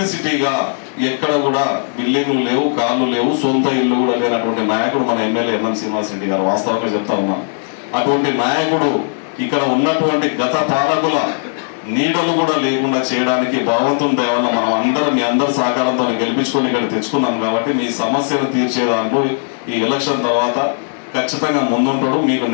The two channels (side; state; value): right; silent; 66 dB below the other